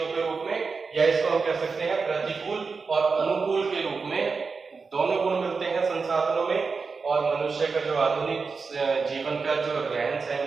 के रूप में, या इसको हम कह सकते हैं प्रतिकूल और अनुकूल के रूप में दोनों गुण मिलते हैं संसाधनों में। और मनुष्य का जो आधुनिक जीवन का जो रहन सहन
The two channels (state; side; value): quieter; left; 4.7 dB